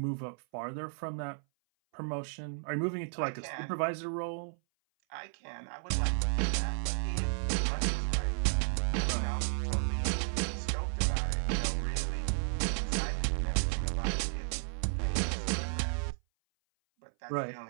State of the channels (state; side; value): silent; left; 56 dB below the other